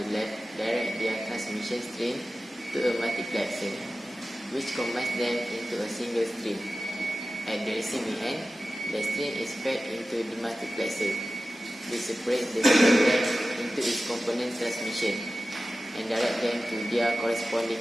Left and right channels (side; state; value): both; normal; correlation 0.95